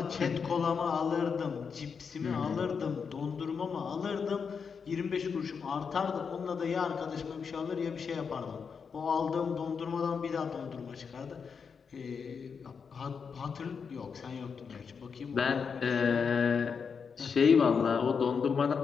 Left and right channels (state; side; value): quieter; right; 6.0 dB